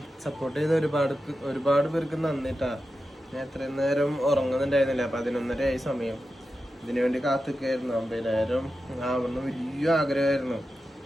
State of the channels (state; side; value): normal; both; correlation 0.91